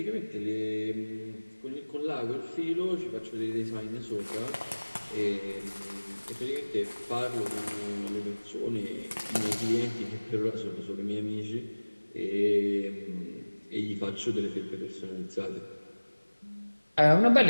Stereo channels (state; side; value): inverted; both; correlation -1.00